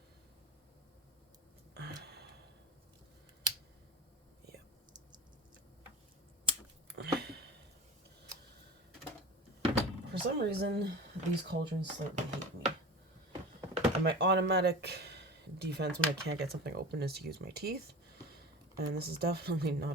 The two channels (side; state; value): both; normal; correlation 0.33